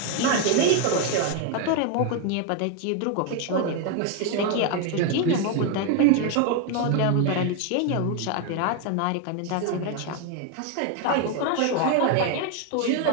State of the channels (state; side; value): different; both; correlation 0.01